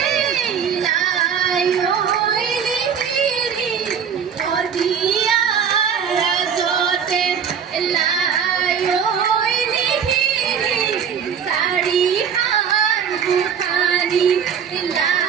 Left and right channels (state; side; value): quieter; left; 7.5 dB